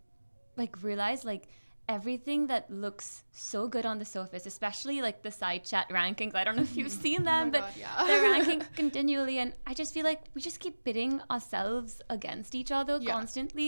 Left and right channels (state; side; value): inverted; both; correlation -1.00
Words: like realize like everything that looks so good on the surface, especially like the side chat rankings, I don't know if you've seen them, but they're ranking continually, and I just feel like we just keep pitting ourselves against each other